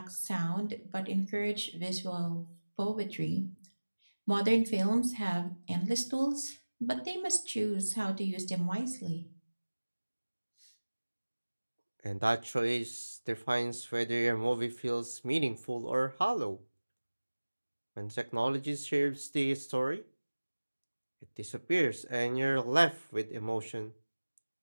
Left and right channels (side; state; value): both; inverted; correlation -1.00